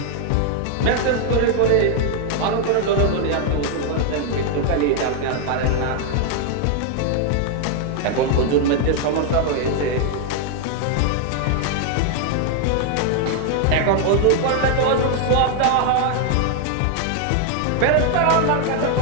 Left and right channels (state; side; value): different; both; correlation 0.00